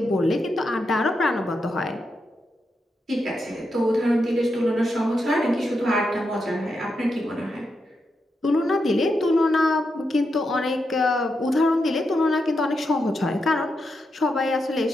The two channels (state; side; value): normal; both; correlation 0.85